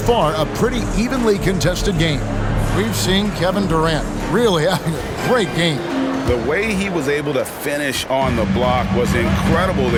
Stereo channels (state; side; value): identical; both; correlation 1.00